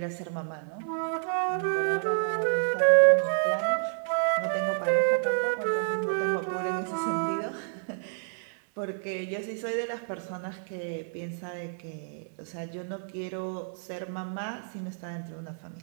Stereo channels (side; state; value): left; silent; digital silence